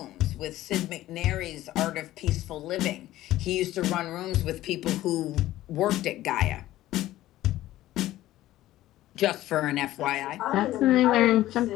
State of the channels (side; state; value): right; quieter; 15.0 dB